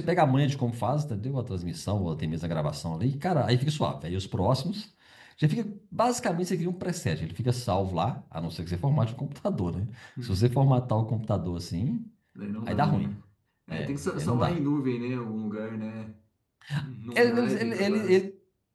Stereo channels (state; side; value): identical; both; correlation 1.00